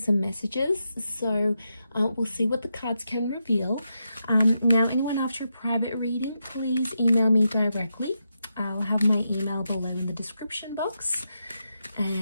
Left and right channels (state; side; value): inverted; both; correlation -0.85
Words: messages. So we'll see what the cards can reveal. Now, anyone after a private reading, please email me directly. I'll have my email below in the description box,